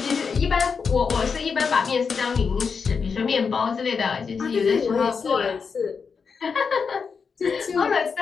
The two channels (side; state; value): right; quieter; 5.7 dB